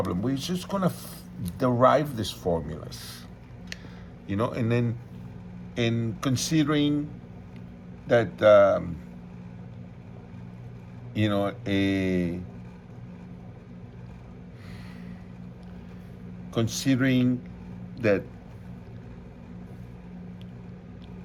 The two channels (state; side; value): identical; both; correlation 1.00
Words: We're just going to derive these formulas, and then in considering that, considering that